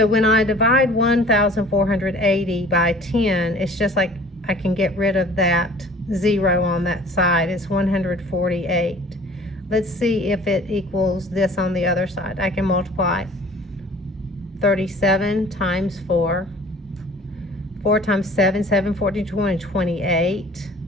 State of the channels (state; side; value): normal; both; correlation 0.49